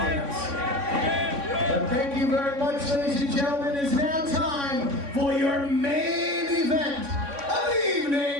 Thank you very much, ladies and gentlemen. It's now time for your main event of the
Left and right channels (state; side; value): late; left; 3.6 ms